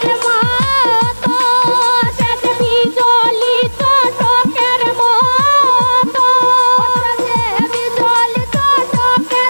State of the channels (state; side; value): inverted; both; correlation -1.00